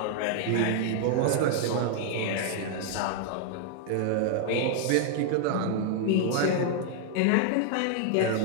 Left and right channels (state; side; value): different; both; correlation 0.00